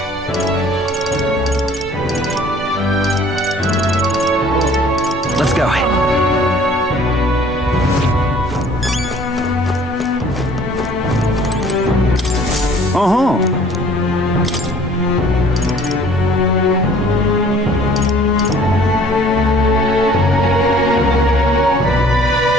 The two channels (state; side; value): normal; both; correlation 0.54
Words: Let's go. Uh-huh.